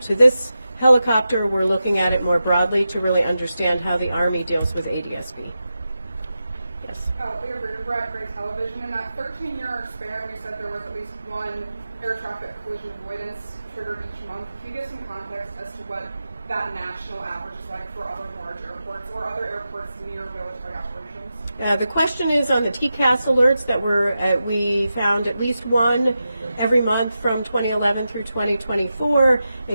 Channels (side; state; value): both; inverted; correlation -0.90